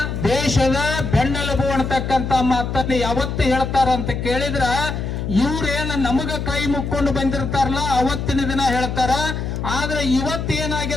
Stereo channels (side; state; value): left; noise; hum, 4 dB below the sound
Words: ದೇಶದ ಬೆನ್ನೆಲುಬು ಅನ್ನತಕ್ಕಂತ ಮಾತನ್ನ ಯಾವತ್ತು ಹೇಳ್ತಾರ ಅಂತ ಕೇಳಿದ್ರ ಇವ್ರೇನ ನಮಗ ಕೈ ಮುಕ್ಕೊಂಡು ಬಂದಿರ್ತಾರಲ್ಲ ಅವತ್ತಿನ ದಿನ ಹೇಳ್ತಾರ. ಆದ್ರೆ